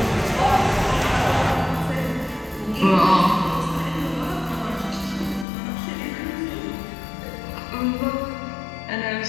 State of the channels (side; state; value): right; drops out; at 5.5 s